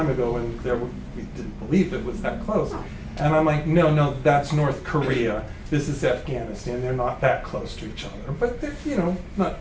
ago, and we didn't believe it was that close. And I'm like, no, that's North Korea. This is Afghanistan. They're not that close to each other, but they're,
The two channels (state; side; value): identical; both; correlation 1.00